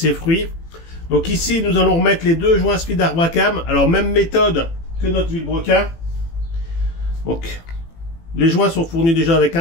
fruits. Donc ici, nous allons remettre les deux joints Speed Arbracam. Alors même méthode que notre vilebrequin. Donc les joints sont fournis déjà avec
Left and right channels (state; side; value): late; right; 18 ms